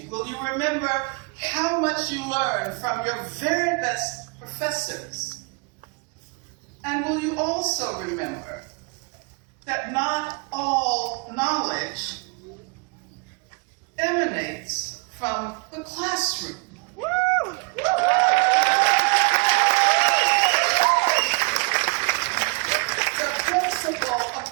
Will you remember how much you learned from your very best professors? And will you also remember that not all knowledge emanates from the classroom? Woo! The principle of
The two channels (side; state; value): left; quieter; 30.4 dB